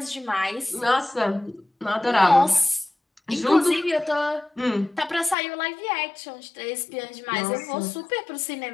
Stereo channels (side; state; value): right; drops out; at 5.4 s